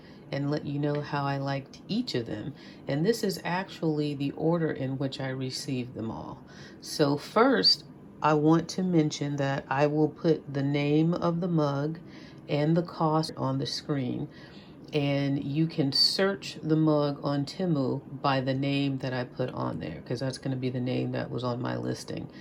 and let you know how I liked each of them. And this is actually the order in which I received them all. So first, I want to mention that I will put the name of the mug and the cost on the screen. And you can search the mug on Temu by the name that I put on there, because that's going to be the name that was on my listing.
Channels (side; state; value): both; identical; correlation 1.00